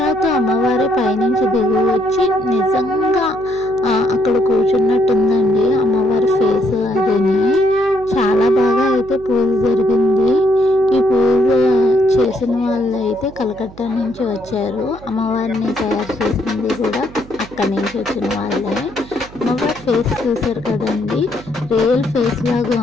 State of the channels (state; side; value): noise; right; hum, 19 dB below the sound